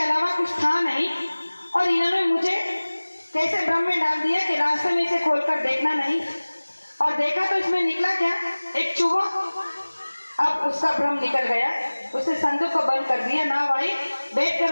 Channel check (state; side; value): inverted; both; correlation -1.00